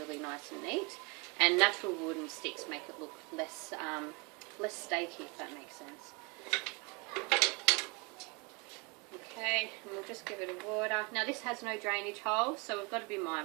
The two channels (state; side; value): quieter; left; 28.9 dB